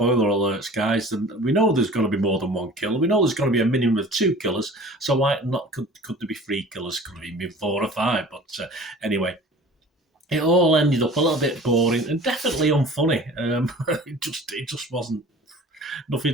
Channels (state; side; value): normal; both; correlation 0.44